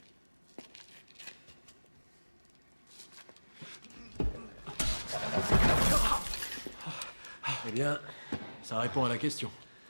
Eh bien, ça répond à la question.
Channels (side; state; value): both; inverted; correlation -1.00